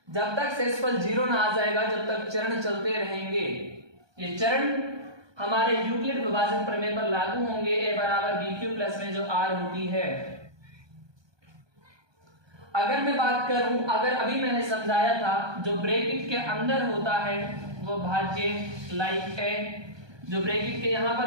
जब तक शेषफल 0 ना आ जाएगा, जब तक चरण चलते रहेंगे। ये चरण हमारे यूक्लिड विभाजन प्रमेय पर लागू होंगे। a बराबर बी क्यू प्लस में जो r होती है। अगर मैं बात करूं, अगर अभी मैंने समझाया था जो ब्रैकेट के अंदर होता है वो भाज्य लाइक a, जो ब्रैकेट के यहां पर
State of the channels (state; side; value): late; left; 1.2 ms